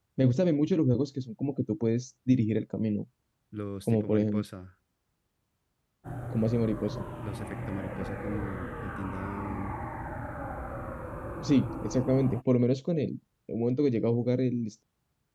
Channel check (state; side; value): identical; both; correlation 1.00